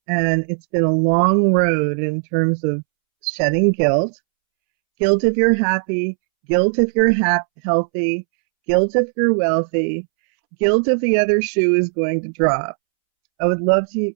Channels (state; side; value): silent; left; 67 dB below the other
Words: and it's been a long road in terms of shedding guilt. Guilt if you're happy, guilt if you're healthy, guilt if you're wealthy, guilt if the other shoe is going to drop. I would love